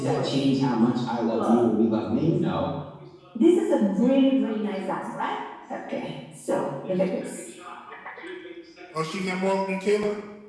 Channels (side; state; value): both; identical; correlation 1.00